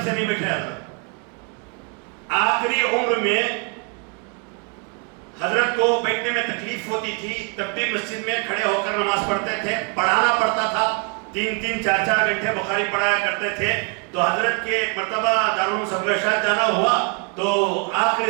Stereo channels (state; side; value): quieter; left; 35.8 dB